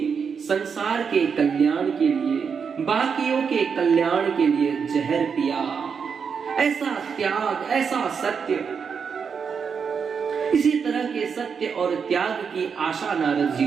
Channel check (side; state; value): left; quieter; 6.3 dB